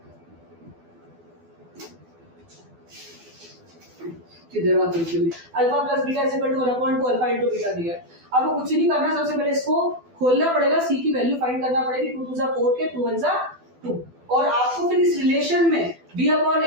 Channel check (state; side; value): late; left; 12 ms